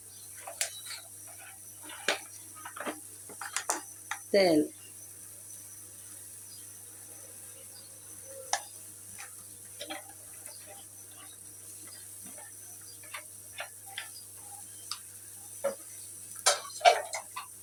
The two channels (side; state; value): both; identical; correlation 1.00